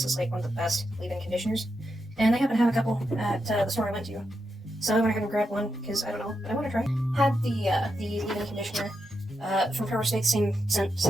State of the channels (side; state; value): both; normal; correlation 0.85